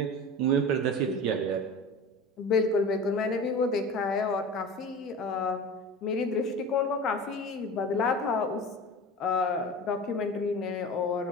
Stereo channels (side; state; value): both; normal; correlation 0.33